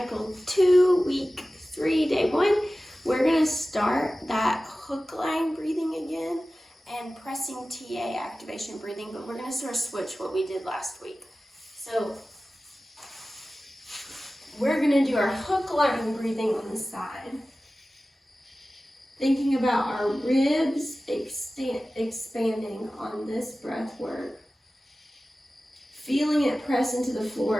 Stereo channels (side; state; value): both; normal; correlation 0.96